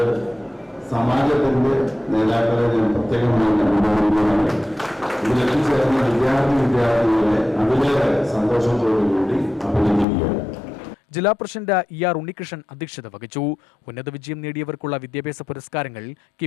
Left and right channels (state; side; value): drops out; right; at 10.1 s